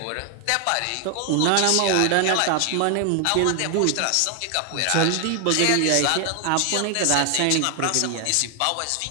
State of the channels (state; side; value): different; both; correlation 0.00